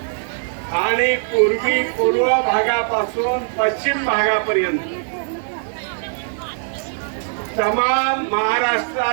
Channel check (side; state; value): left; silent; 65 dB below the other